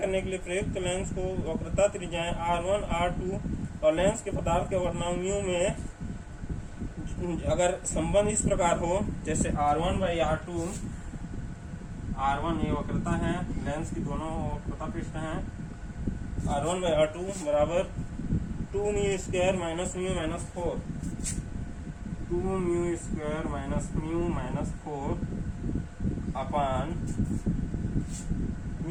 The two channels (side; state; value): both; identical; correlation 1.00